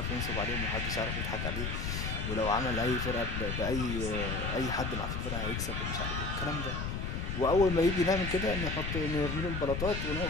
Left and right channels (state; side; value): noise; left; rumble, 3 dB below the sound